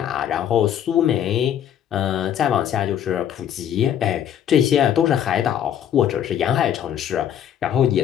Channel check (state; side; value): quieter; right; 9.9 dB